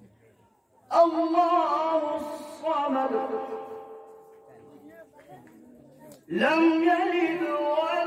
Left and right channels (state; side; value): identical; both; correlation 1.00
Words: الله الصمد لم يلد